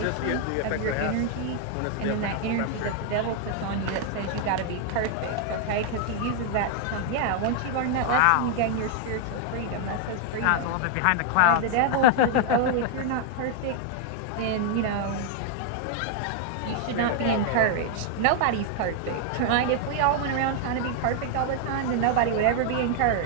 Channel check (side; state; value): both; different; correlation 0.00